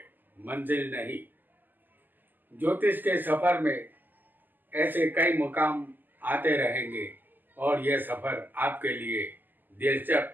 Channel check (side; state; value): left; late; 0.088 ms